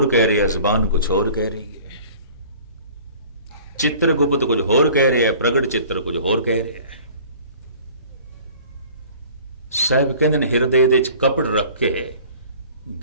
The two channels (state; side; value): inverted; both; correlation -0.47